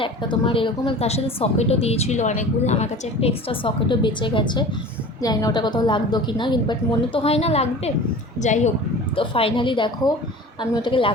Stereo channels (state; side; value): normal; both; correlation 0.39